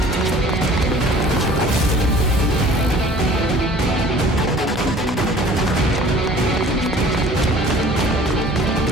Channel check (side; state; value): both; normal; correlation 0.49